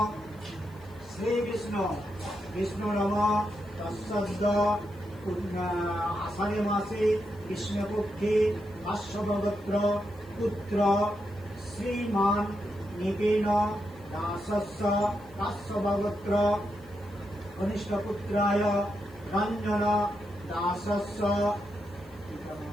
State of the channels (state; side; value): noise; left; hiss, 29 dB below the sound